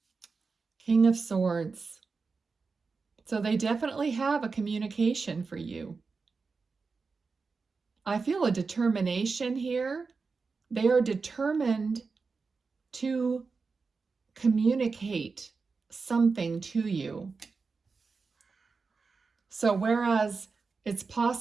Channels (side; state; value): left; quieter; 4.6 dB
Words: King of Swords. So they definitely have a communication for you. I feel a determination here. They are determined to communicate something to you. So whereas it's